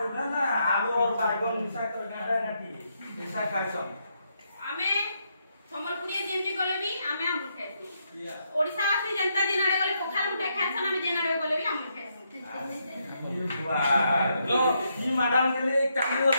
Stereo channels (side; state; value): both; inverted; correlation -0.78